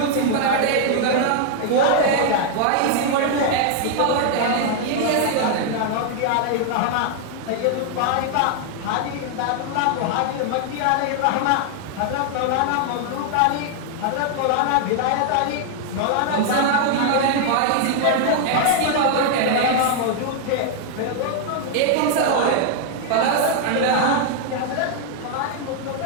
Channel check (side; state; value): both; different; correlation 0.00